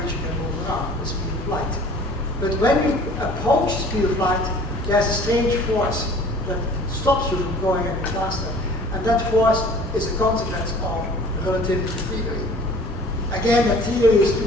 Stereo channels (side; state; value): both; normal; correlation 0.48